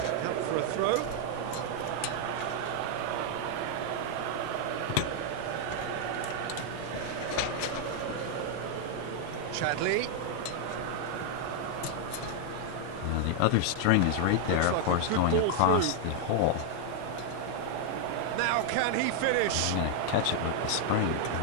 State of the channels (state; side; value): different; both; correlation 0.00